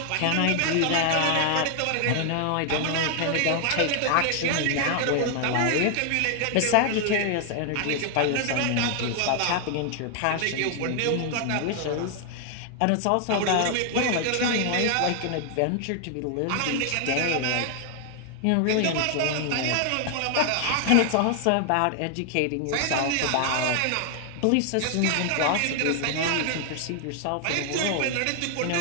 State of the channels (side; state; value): both; different; correlation 0.00